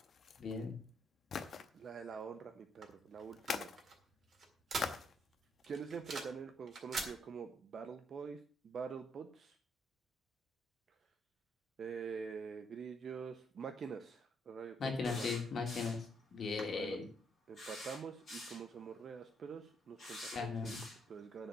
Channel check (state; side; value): normal; both; correlation 0.73